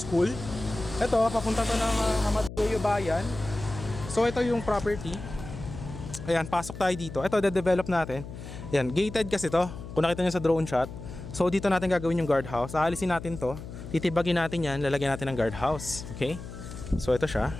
Ito, papunta to ng Amadeo Bayan. So ito yung property. Ayan, pasok tayo dito. Ito, de-develop natin. Ayan, gated kasi to. Kung nakita nyo sa drone shot. So dito natin gagawin yung guardhouse. Aalisin natin to. Titibagin natin yan. Lalagyan natin ng guardhouse. Okay? So ito siya.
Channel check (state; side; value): noise; left; hum, 11 dB below the sound